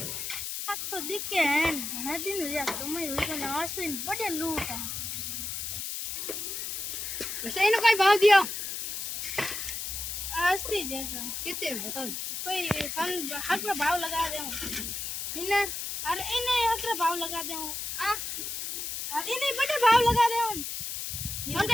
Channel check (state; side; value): noise; left; hiss, 5 dB below the sound